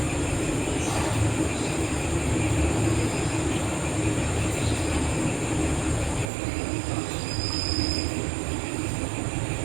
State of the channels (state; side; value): drops out; left; at 6.3 s